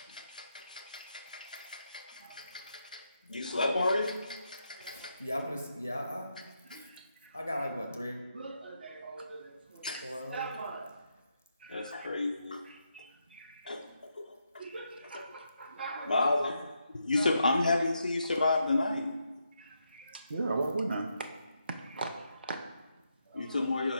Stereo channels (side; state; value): both; inverted; correlation -0.81